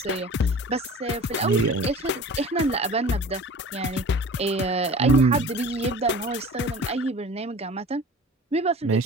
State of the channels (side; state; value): both; normal; correlation 0.41